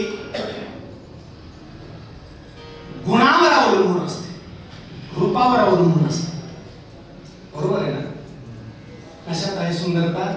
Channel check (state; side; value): identical; both; correlation 1.00